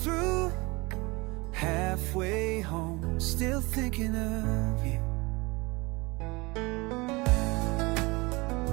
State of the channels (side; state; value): left; quieter; 24.7 dB